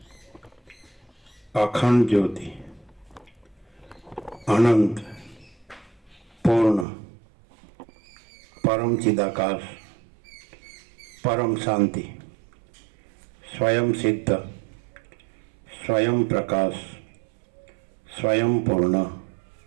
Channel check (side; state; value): left; drops out; at 6.9 s